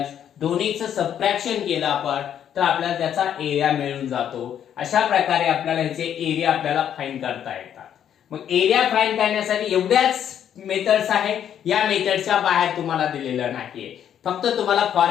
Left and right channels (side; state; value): right; quieter; 9.5 dB